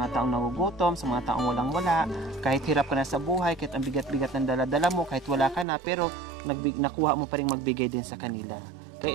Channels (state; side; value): drops out; left; at 5.7 s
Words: taong nagugutom, sa mga taong walang-wala. Kahit hirap ka na sa buhay, kahit ang bigat-bigat ng dala-dala mo, kahit wala ka na, pero nakuha mo pa rin magbigay din sa kanila.